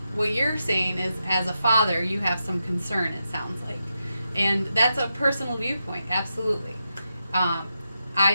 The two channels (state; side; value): inverted; both; correlation -0.86